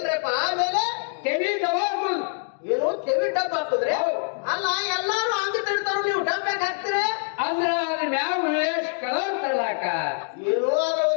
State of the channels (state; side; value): silent; right; 62 dB below the other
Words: ಆಮೇಲೆ ತೆವಿ ತಗೋದು ಏನು ತೆವಿ ಡಬ್ಬ ಹಾಕುದ್ರಿ ಹೌದು. ಅಲ್ಲ ಎಲ್ಲಾರು ಹಂಗ ತಿಳ್ತಾರ ನೀವು ಡಬ್ಬ ಹಾಕ್ತೀರಿ ಅಂದ್ರ ಅದ್ರ ಮ್ಯಾಗ ಉಳ್ಳೇಶ್ ಕಲರ್ ತರ್ಲಾಕ ಏನು